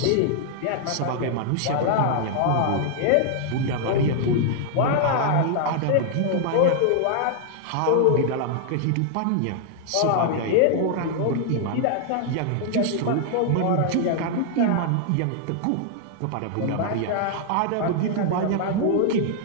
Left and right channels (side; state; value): both; different; correlation -0.01